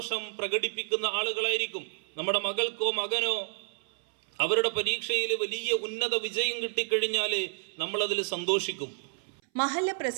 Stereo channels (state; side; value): silent; left; 58 dB below the other